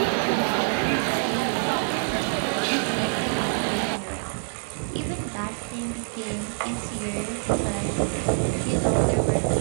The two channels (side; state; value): left; silent; 61 dB below the other